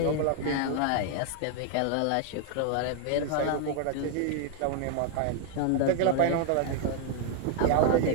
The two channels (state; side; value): different; both; correlation 0.00